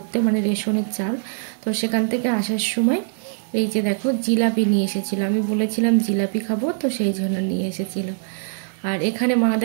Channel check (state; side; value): silent; left; digital silence